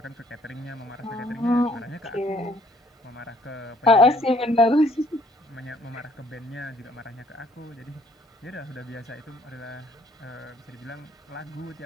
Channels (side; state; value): both; normal; correlation 0.62